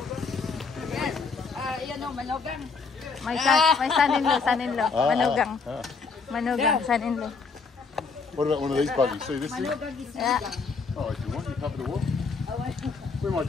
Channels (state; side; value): quieter; right; 4.8 dB